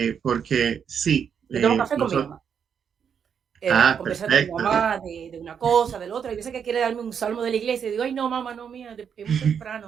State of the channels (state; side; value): quieter; left; 7.5 dB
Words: porque sí. Yo tomo café con mi mamá. Conversar con mi Perfecto. mamá de una cosa, del otro. Hay veces que quiere darme un salmo de la iglesia y digo, ay, no, mamá, no, mía, es muy temprano,